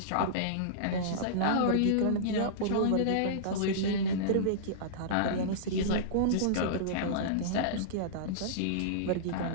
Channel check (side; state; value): both; different; correlation -0.03